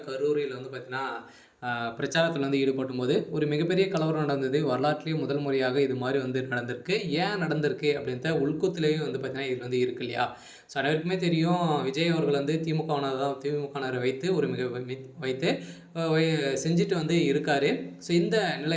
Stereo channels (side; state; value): both; identical; correlation 1.00